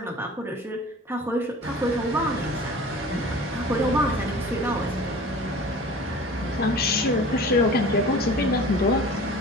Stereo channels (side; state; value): both; normal; correlation 0.41